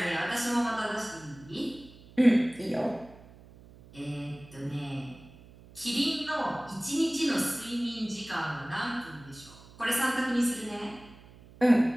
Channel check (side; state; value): right; noise; hum, 21 dB below the sound